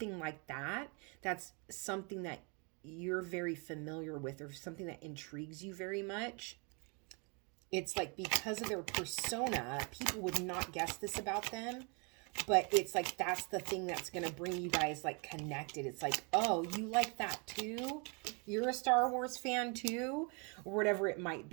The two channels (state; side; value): quieter; left; 33.7 dB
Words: like that. That's something that you're very familiar with, or something that intrigues you very much. It's like because of their persona, people would not guess this about them, but it's like that's the thing that's going to bring you guys like connected. It's like, oh, you like that too? You're a Star Wars fan too? Or whatever it might